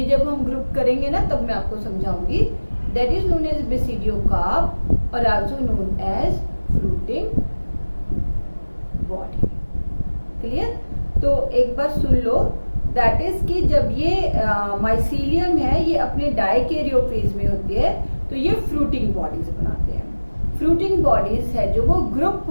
जब हम ग्रुप करेंगे ना तब मैं आपको समझाऊंगी। That is known as basidiocarp और also known as fruiting body. Clear? तो एक बार सुन लो, दैट इज कि जब ये माइसीलियम है, ये अपने डाइकैरियो फेज में होती है, तो ये फ्रूटिंग बॉडीज बनाते हैं। फ्रूटिंग बॉडीज है जो वो ग्रुप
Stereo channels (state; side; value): inverted; both; correlation -1.00